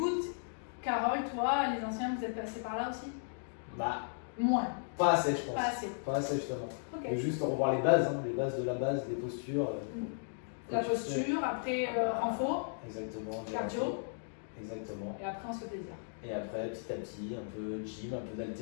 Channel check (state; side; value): silent; right; digital silence